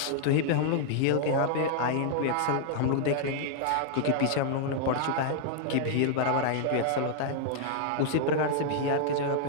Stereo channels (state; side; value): different; both; correlation -0.01